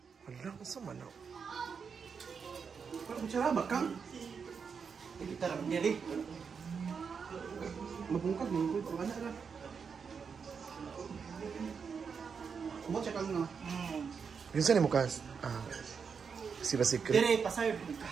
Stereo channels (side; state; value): left; quieter; 6.0 dB